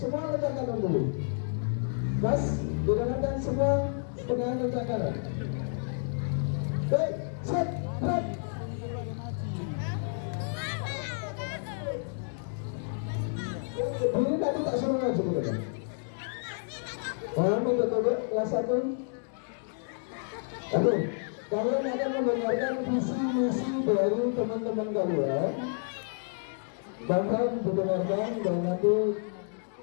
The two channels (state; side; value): silent; right; digital silence